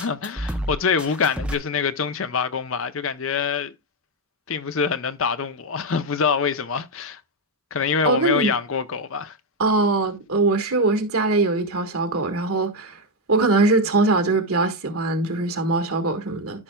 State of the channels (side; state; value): both; normal; correlation 0.05